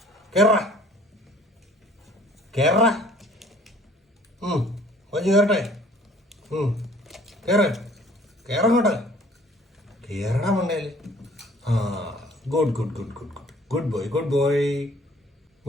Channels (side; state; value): both; normal; correlation 0.54